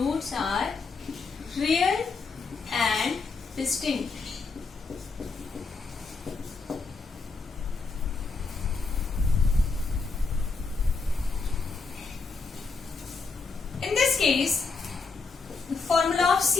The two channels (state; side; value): quieter; right; 4.4 dB